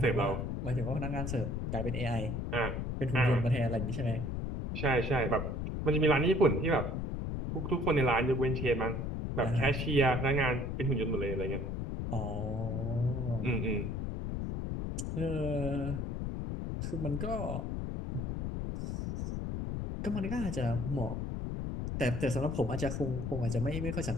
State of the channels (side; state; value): left; noise; rumble, 3 dB below the sound